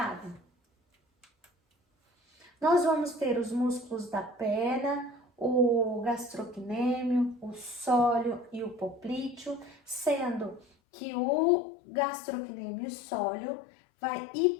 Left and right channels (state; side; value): drops out; right; at 10.7 s